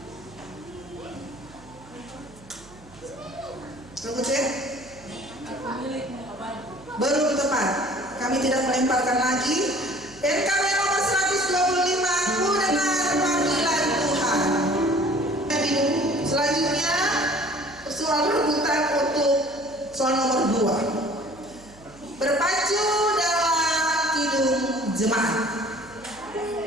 Regu C. Belum tepat. Kami tidak melemparkan lagi. NKB nomor 125 ku dengan panggilan Tuhan. Selanjutnya soal rebutan untuk soal nomor 2. Berpacu dalam Kidung Jemaat.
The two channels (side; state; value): right; noise; hum, 23 dB below the sound